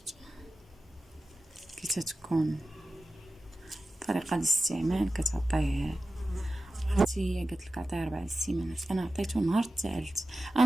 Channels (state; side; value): normal; both; correlation 0.94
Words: كي تتكون طريقه الاستعمال كتعطيه. عرفتي هي قالت لك عطيه 4 سيمانات، انا عطيته نهار الثالث.